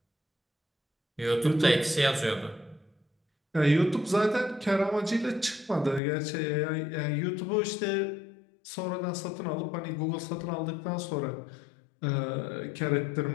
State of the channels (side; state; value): right; drops out; at 6.0 s